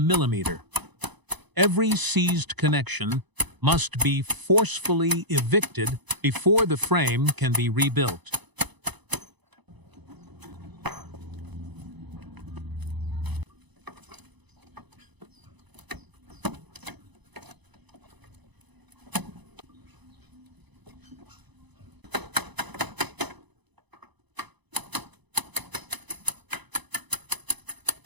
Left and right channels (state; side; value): late; left; 1.0 ms